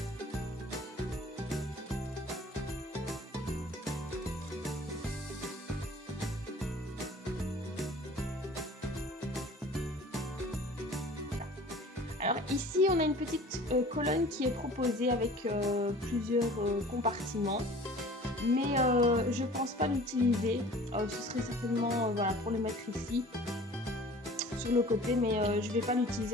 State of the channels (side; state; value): both; normal; correlation 0.45